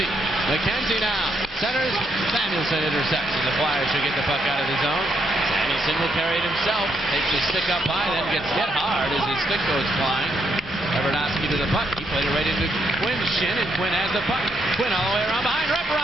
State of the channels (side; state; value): both; normal; correlation 0.76